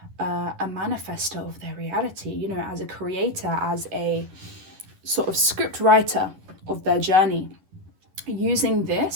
a manifester of their reality, as a creator, as a sort of script writer of their journey, using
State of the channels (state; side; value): late; left; 11 ms